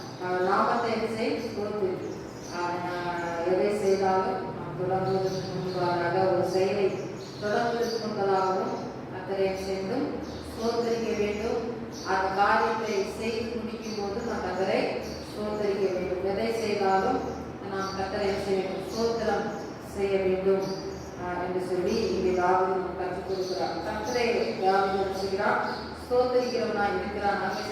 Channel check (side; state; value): both; identical; correlation 1.00